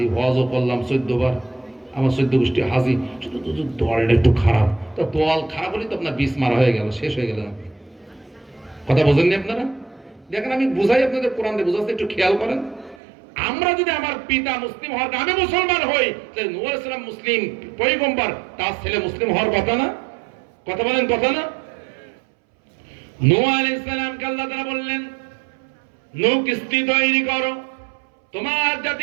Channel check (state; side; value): drops out; left; at 13.0 s